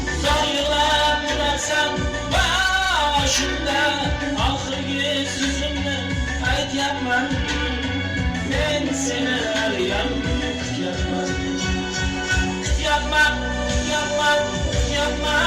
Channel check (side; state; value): both; identical; correlation 1.00